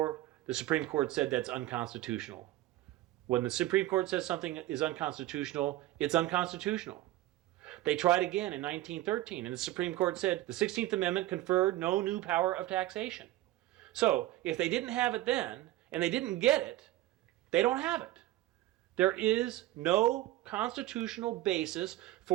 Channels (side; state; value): left; quieter; 15.8 dB